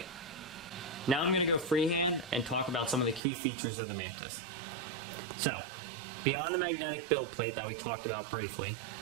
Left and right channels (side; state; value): left; drops out; at 3.2 s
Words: Now I'm going to go freehand and talk about some of the key features of the Mantis. So, beyond the magnetic build plate that we talked about briefly,